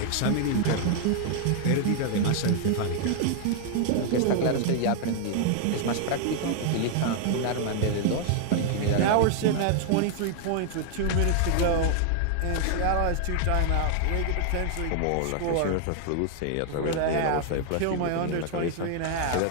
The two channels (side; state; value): both; different; correlation 0.00